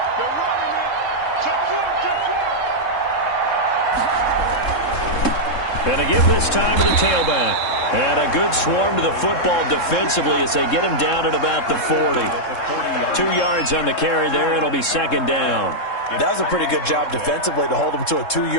Going to give this time to the tailback. And a good swarm to the football defensively as they get him down at about the 40. 2 yards on the carry there. It'll be second down. That was a pretty good job defensively to hold him to a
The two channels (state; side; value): late; right; 3.7 ms